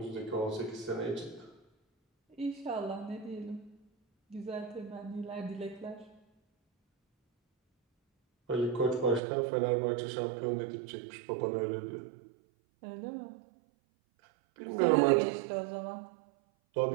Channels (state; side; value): drops out; left; at 9.2 s